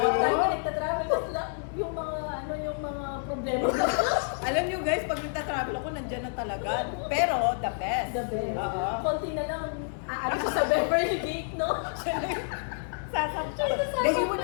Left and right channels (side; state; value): right; silent; 59 dB below the other